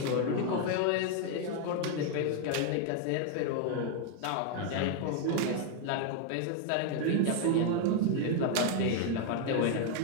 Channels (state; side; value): different; both; correlation 0.00